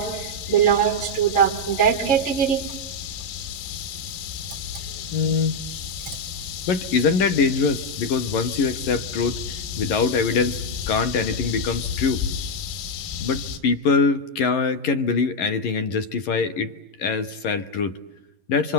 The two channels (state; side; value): late; right; 11 ms